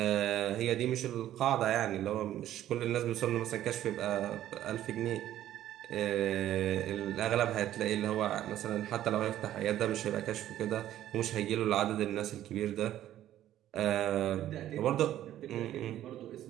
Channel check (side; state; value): left; quieter; 12.5 dB